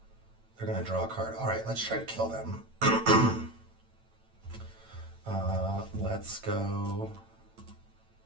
They're going to draw a card. All right, let's try to kill them. Let's go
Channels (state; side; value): late; left; 8.9 ms